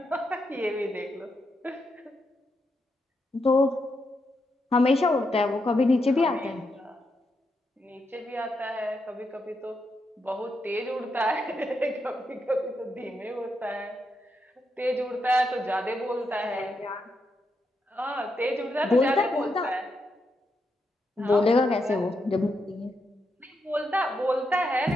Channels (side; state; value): both; normal; correlation 0.83